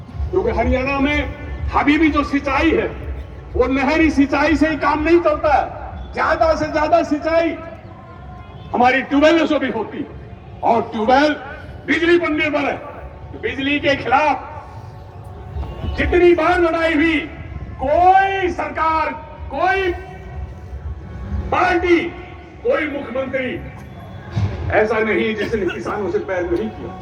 क्योंकि हरियाणा में अभी भी जो सिंचाई है वो नहरी सिंचाई से ही काम नहीं चलता है। ज्यादा से ज्यादा सिंचाई हमारी ट्यूबवेलों से भी होती, और ट्यूबवेल बिजली पर निर्भर है। तो बिजली के खिलाफ जितनी बार लड़ाई हुई, कोई सरकार, कोई पार्टी, कोई मुख्यमंत्री ऐसा नहीं जिसने किसानों से पैर नहीं किया।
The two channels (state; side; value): identical; both; correlation 1.00